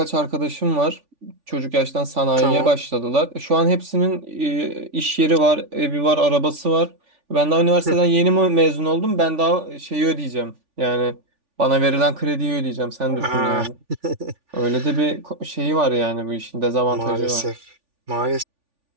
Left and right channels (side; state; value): left; late; 3.5 ms